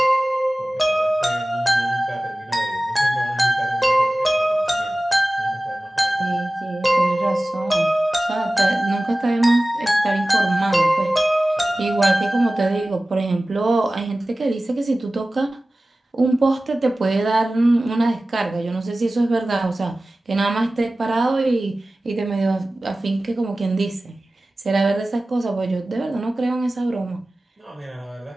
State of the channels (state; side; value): normal; both; correlation 0.97